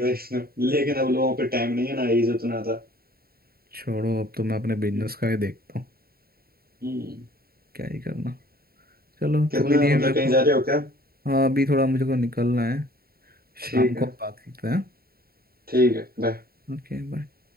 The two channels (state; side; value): late; left; 0.44 ms